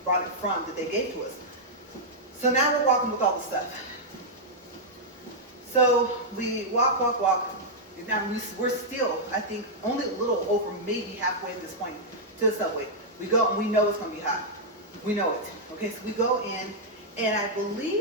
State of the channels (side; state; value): both; normal; correlation -0.06